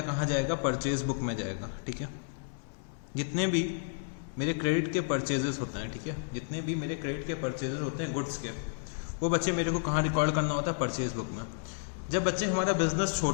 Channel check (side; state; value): right; silent; digital silence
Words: कहाँ जाएगा, परचेज बुक में जाएगा, ठीक है। जितने भी मेरे क्रेडिट के परचेजेस होते हैं, ठीक है, जितने भी मेरे क्रेडिट के परचेजेस होते हैं गुड्स के, वो बच्चे मेरे को कहाँ रिकॉर्ड करना होता है, परचेज बुक में। जब बच्चे हमारा बिजनेस